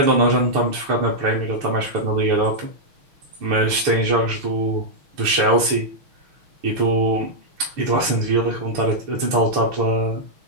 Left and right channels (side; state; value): left; late; 6.3 ms